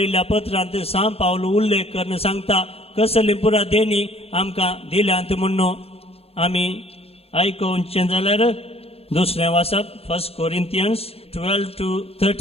पत्रांत सांब पावलो उल्लेख करून सांगता कसली पुरा देणी आमकां दिल्यांत म्हणून आमी आयकोवचें जाल्यार दुसरें वाचप 1 Corinthians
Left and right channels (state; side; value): late; right; 0.29 ms